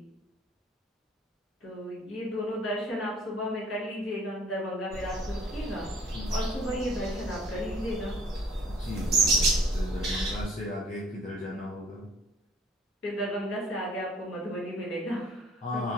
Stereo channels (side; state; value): both; normal; correlation 0.55